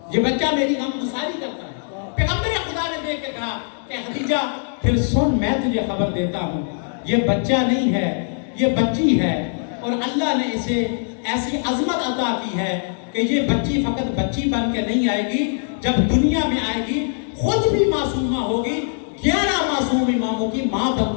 یہ بچہ میری غم گساری کرتا ہے. پیغمبر خدا نے دیکھ کے کہا کہ خدیجہ پھر سن میں تجھے خبر دیتا ہوں، یہ بچہ نہیں ہے یہ بچی ہے، اور اللہ نے اسے ایسی عظمت عطا کی ہے کہ یہ بچی فقط بچی بن کے نہیں آئے گی، جب دنیا میں آئے گی خود بھی معصومہ ہوگی، 11 معصوم اماموں کی ماں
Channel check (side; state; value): right; silent; 63 dB below the other